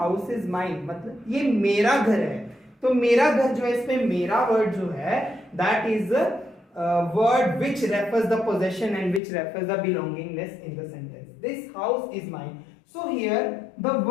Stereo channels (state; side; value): drops out; right; at 9.2 s